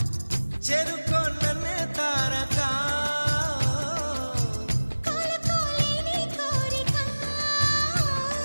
చెరుకో నన్నే తారకా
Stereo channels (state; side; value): inverted; both; correlation -1.00